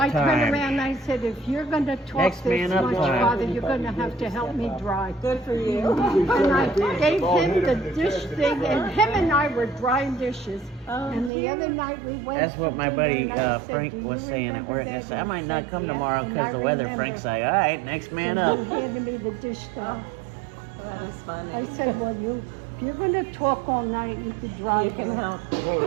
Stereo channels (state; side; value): drops out; left; at 11.3 s